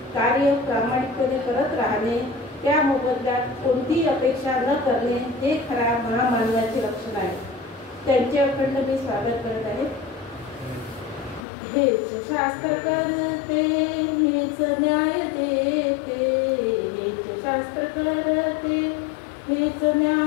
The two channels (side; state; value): right; drops out; at 11.5 s